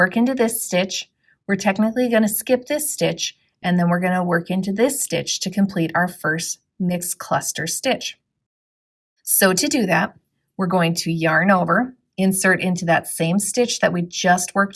into this stitch. We're technically going to skip this stitch, and then we're going to work into this stitch to complete our first mixed cluster stitch. So to do that, we're going to yarn over, insert into that same stitch that we just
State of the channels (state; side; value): identical; both; correlation 1.00